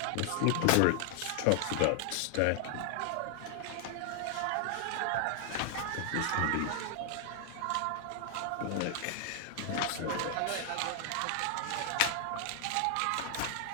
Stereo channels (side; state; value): both; different; correlation 0.00